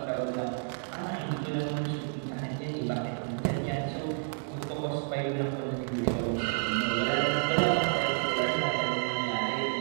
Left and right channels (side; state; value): left; silent; 58 dB below the other